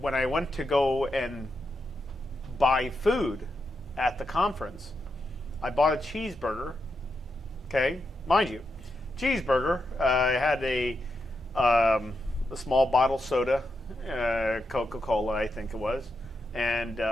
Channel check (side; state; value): both; normal; correlation 0.85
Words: I went to go and buy food at the conference, I bought a cheeseburger. Okay, mind you, cheeseburger. I had a small bottle soda, Coca-Cola, I think it was, and